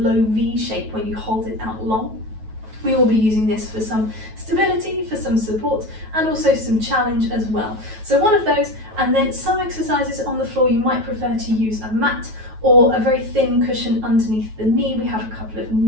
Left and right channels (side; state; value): left; late; 9.2 ms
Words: V shape when you hold it out long. We will be using this for some stability, for some support, and also some challenge as well. So one of those, and then some exercises on the floor. You might prefer to use a mat or a very thin cushion underneath the knee. We have a couple of